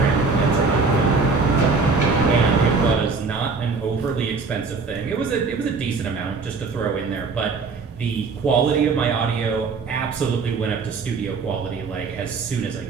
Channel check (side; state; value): left; quieter; 4.5 dB